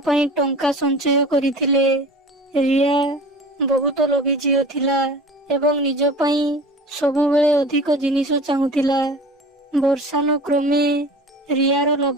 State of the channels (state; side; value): normal; both; correlation 0.39